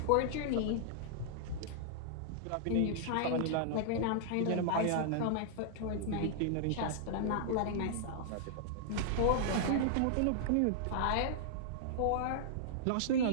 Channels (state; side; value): different; both; correlation -0.01